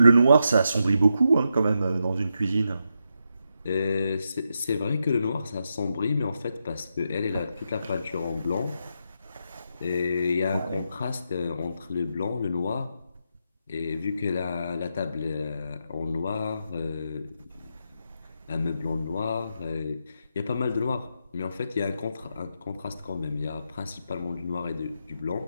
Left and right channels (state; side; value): inverted; both; correlation -0.84